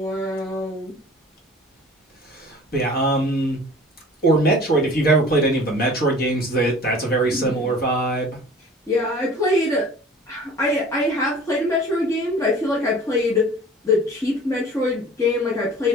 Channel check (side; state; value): both; normal; correlation 0.45